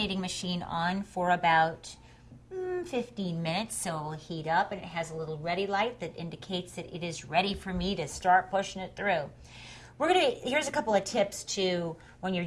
machine on for about 15 minutes, so it'll heat up, and it has a little ready light that indicates that it is ready for me to start pushing it through. Here's a couple of tips to when you're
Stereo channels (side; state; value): both; identical; correlation 1.00